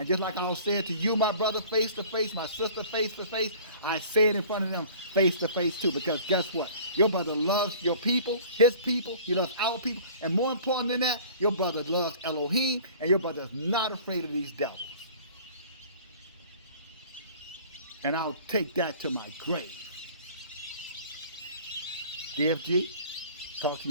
just like I'll say it to you, my brother, face to face, my sister, face to face, I say it in front of them face to face too. Because guess what? Your brother loves your people, his people, he loves our people. And more important than that, your brother loves Elohim, and your brother is not afraid of these devils. And I'll take that to my grave. DFG, talk to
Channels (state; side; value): inverted; both; correlation -0.47